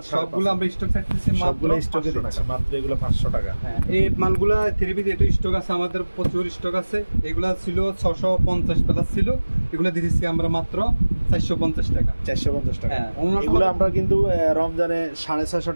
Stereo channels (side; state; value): both; inverted; correlation -1.00